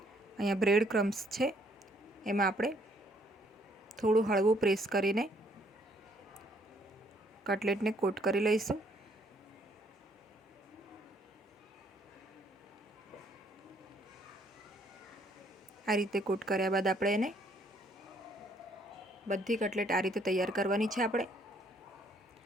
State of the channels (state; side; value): normal; both; correlation 0.66